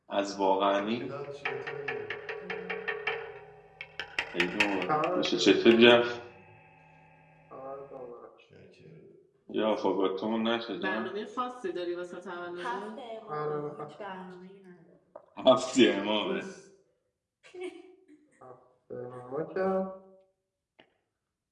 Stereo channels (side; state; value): both; identical; correlation 1.00